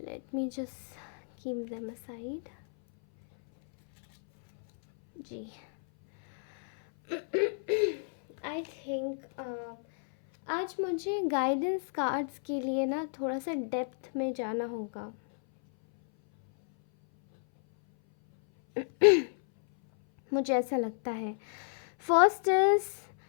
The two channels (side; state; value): right; silent; 57 dB below the other